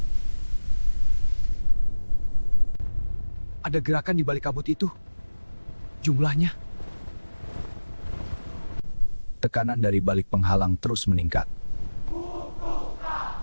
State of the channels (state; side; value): inverted; both; correlation -1.00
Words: Ada gerakan di balik kabut itu. Jumlahnya. Tekanan dari balik penghalang terus meningkat.